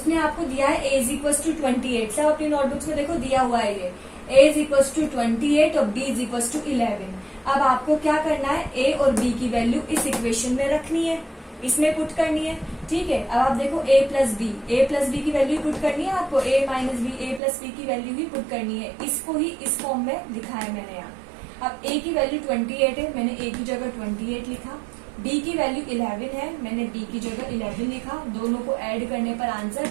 आपको दिया है ए इज इक्वल टू 28। सब अपनी नोटबुक्स में देखो दिया हुआ है ये ए इज इक्वल टू 28 और बी इज इक्वल टू 11। अब आपको क्या करना है, ए और बी की वैल्यू इस इक्वेशन में रखनी है, इसमें पुट करनी है। ठीक है, अब आप देखो ए प्लस बी की वैल्यू पुट करनी है आपको, ए माइनस बी ए प्लस बी की वैल्यू ही पुट करनी है। इसको ही इस फॉर्म में लिखा है मैंने यहाँ। अब ए की वैल्यू 28 है, मैंने ए की जगह 28 लिखा। बी की वैल्यू 11 है, मैंने बी की जगह 11 लिखा। दोनों को ऐड करने पर आंसर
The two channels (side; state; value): left; drops out; at 17.4 s